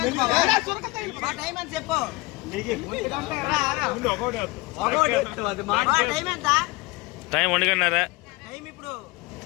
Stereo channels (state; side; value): quieter; right; 23.0 dB